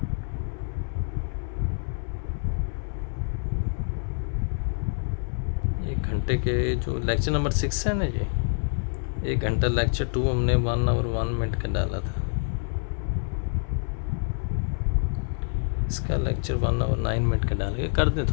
एक घंटे के जो लेक्चर नंबर 6 है ना, ये 1 घंटा लेक्चर 2 हमने 1 आवर 1 मिनट का डाला था, इसका लेक्चर 1 आवर 9 मिनट का डाल के कर दें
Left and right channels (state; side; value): silent; right; digital silence